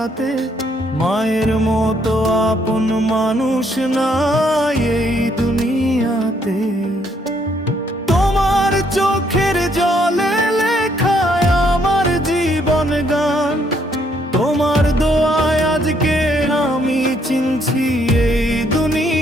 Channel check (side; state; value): both; normal; correlation 0.70